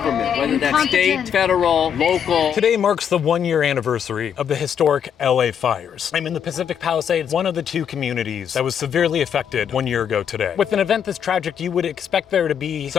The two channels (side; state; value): right; quieter; 8.3 dB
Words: whether that's state, federal, local. Today marks the 1-year anniversary of the historic LA fires. I'm in the Pacific Palisades, one of the 2 communities that was severely affected 1 year ago today. With an event this tragic, you would expect there to be